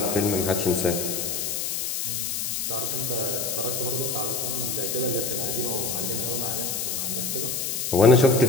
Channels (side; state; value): left; noise; hiss, 2 dB below the sound